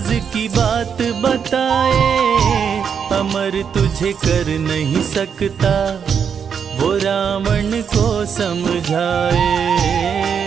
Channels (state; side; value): quieter; left; 7.1 dB